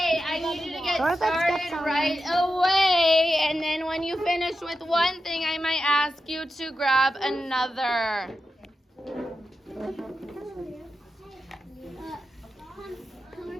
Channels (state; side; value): normal; both; correlation 0.90